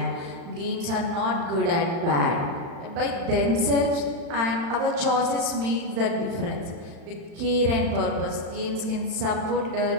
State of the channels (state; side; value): late; left; 35 ms